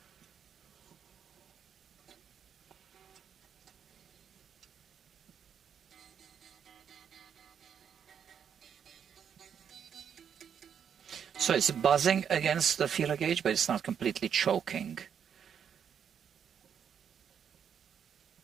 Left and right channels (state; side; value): quieter; left; 7.9 dB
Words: So it's buzzing against the feeler gauge, but it's not completely choking.